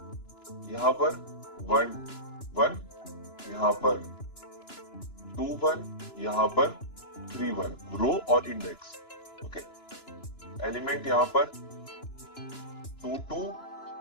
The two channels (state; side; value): late; right; 2.9 ms